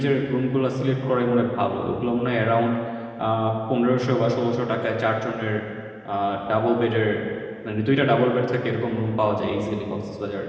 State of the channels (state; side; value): identical; both; correlation 1.00